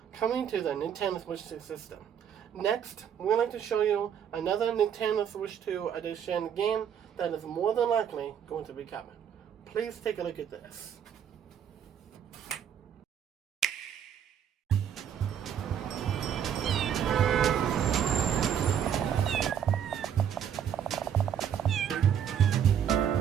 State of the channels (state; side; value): quieter; left; 8.7 dB